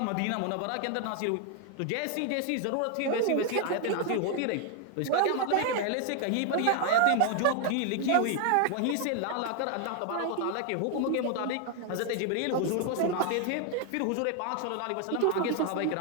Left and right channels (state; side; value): different; both; correlation 0.00